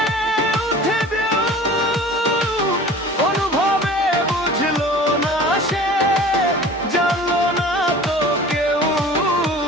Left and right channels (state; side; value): normal; both; correlation 0.42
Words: উঠে ঢেউ, অনুভবে বুঝলো না সে, জানলো না তো কেউ।